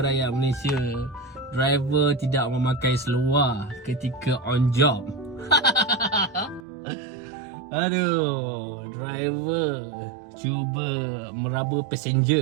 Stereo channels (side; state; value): left; drops out; at 6.6 s